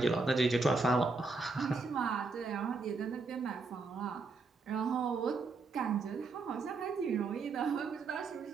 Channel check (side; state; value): left; quieter; 4.0 dB